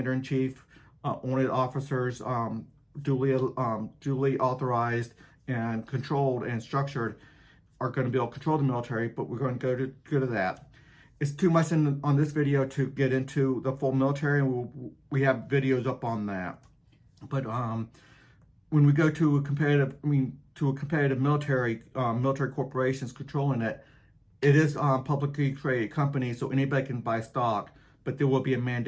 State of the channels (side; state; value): both; identical; correlation 1.00